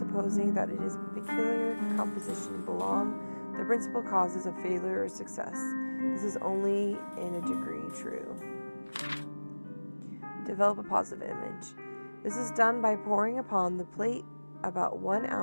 that it is peculiar composition belong the principal causes of failure or success. This is only in a degree true. Develop a positive image. This is done by pouring upon the plate about 1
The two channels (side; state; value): both; inverted; correlation -1.00